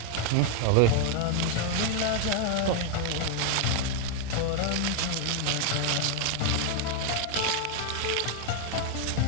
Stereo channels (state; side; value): different; both; correlation 0.00